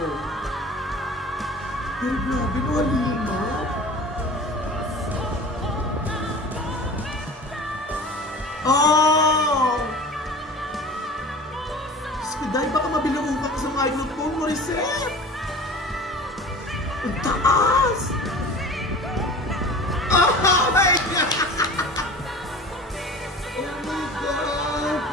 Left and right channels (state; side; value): normal; both; correlation 0.39